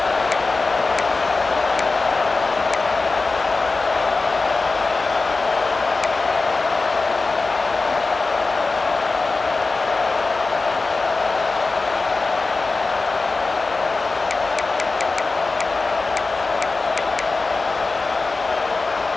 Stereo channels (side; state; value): right; quieter; 3.7 dB